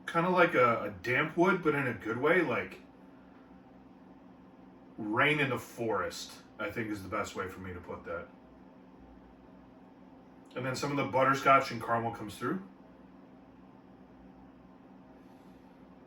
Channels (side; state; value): both; identical; correlation 1.00